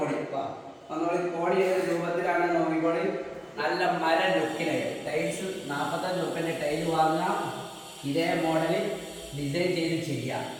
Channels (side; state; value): both; identical; correlation 1.00